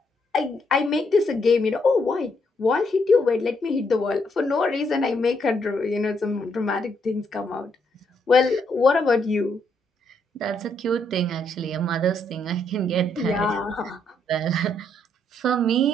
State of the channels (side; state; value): both; normal; correlation 0.74